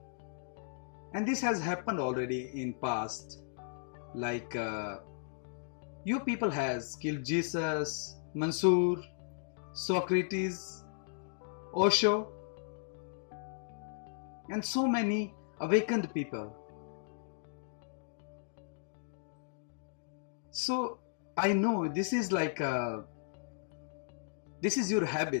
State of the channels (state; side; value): silent; right; digital silence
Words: And this has happened already in past. Like you people has killed Jesus, Mansoor, Socrates, Osho, and so many awakened people. So I know this is like this is your